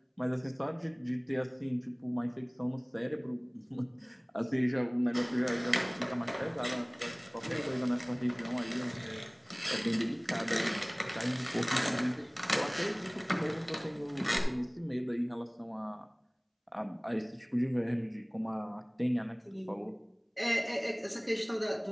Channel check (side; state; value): both; identical; correlation 1.00